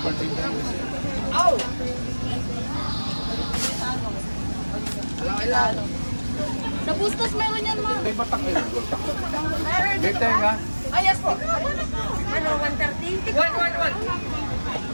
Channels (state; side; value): inverted; both; correlation -1.00